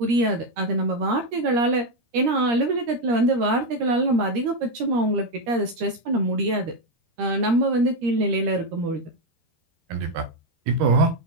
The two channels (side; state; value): left; late; 13 ms